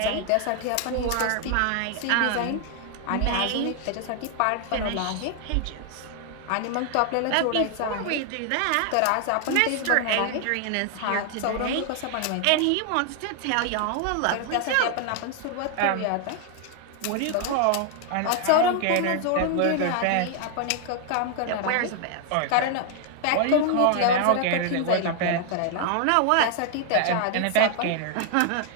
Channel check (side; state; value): both; different; correlation 0.00